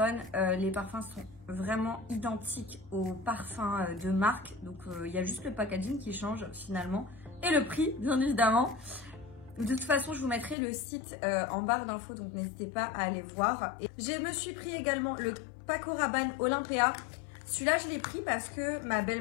Les parfums sont vraiment identiques aux parfums de marque. Donc, il y a juste le packaging qui change finalement. Et le prix, bien évidemment. De toute façon, je vous mettrai le site en barre d'infos. Donc, n'hésitez pas à aller voir. Et je me suis pris également le Paco Rabanne Olympia. Celui-là, je l'ai pris parce que ma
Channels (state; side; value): drops out; right; at 10.6 s